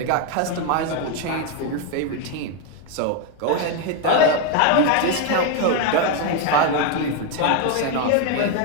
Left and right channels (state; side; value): different; both; correlation 0.01